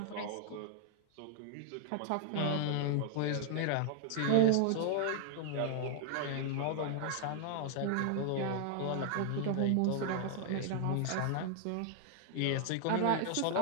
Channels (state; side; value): different; both; correlation 0.00